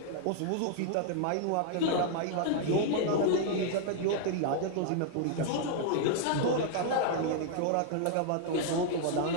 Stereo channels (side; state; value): both; different; correlation -0.01